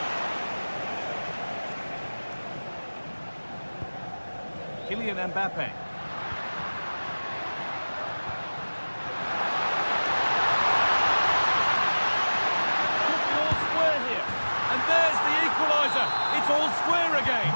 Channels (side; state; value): both; inverted; correlation -1.00